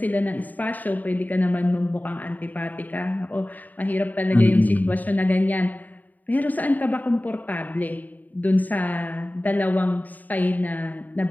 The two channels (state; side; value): late; right; 0.082 ms